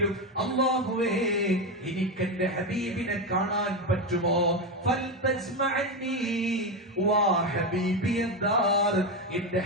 അല്ലാഹുവേ എനിക്ക് എന്റെ ഹബീബിനെ കാണാൻ പറ്റുമോ? ഫൽതജ്മഅനി വാ ഹബീബിയദ്ദാർ, എന്റെ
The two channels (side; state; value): both; normal; correlation 0.13